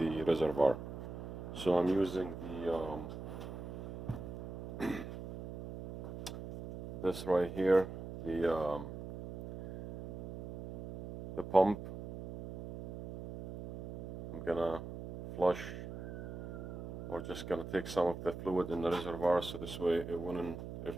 reservoir. So I'm using the this right here, the pump. I'm gonna flush, or just gonna take some of the fluid in the reservoir, so this way it wouldn't, if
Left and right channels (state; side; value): noise; right; hum, 9 dB below the sound